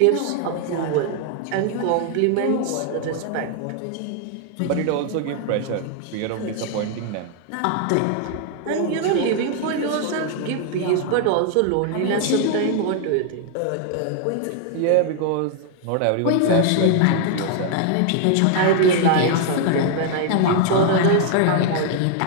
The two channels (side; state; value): both; different; correlation 0.00